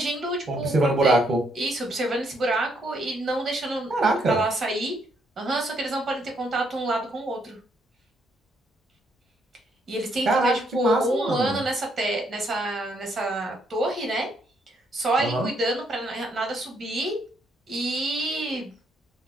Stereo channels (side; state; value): both; normal; correlation 0.72